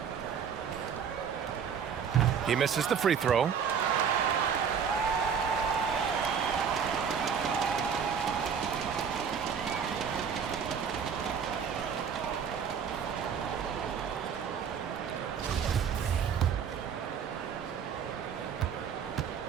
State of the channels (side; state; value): left; quieter; 7.1 dB